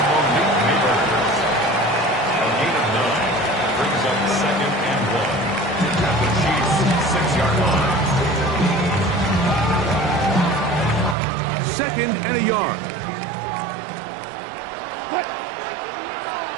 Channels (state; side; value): drops out; left; at 11.2 s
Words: Monique Neighbors. A gain of 9 brings up 2nd and 1 at the Chiefs' 6-yard line. 2nd and a yard.